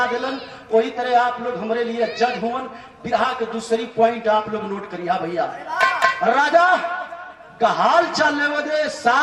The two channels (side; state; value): both; identical; correlation 1.00